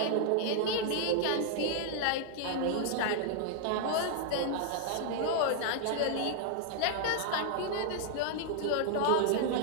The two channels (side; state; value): both; different; correlation -0.01